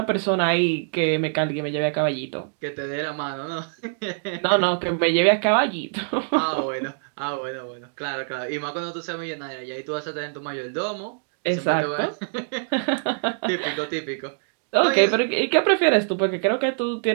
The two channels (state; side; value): silent; left; digital silence